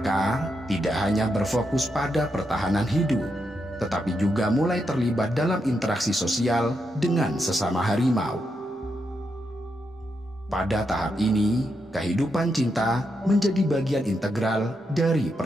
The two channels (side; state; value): both; normal; correlation 0.83